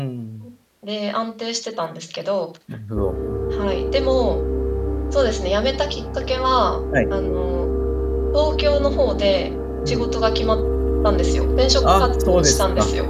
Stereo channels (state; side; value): identical; both; correlation 1.00